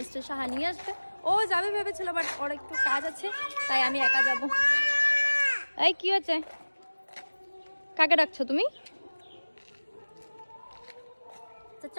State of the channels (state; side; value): inverted; both; correlation -1.00